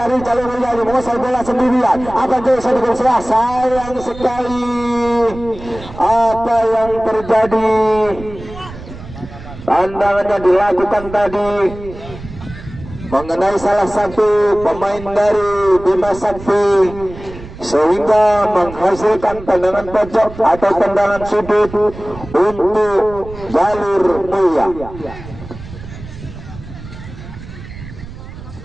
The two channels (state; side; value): noise; right; rumble, 14 dB below the sound